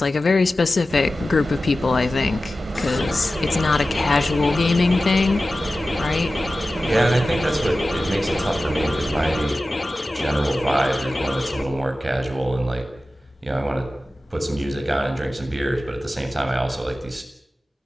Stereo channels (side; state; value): both; normal; correlation 0.95